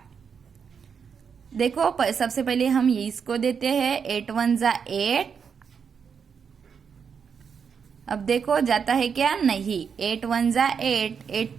देखो सबसे पहले हम ये इसको देते हैं, 8 1 जा 8। अब देखो जाता है क्या, नहीं, 8 1 जा 8, 8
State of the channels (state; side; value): quieter; left; 6.6 dB